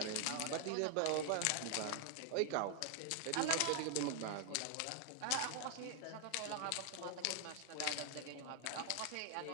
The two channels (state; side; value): different; both; correlation 0.00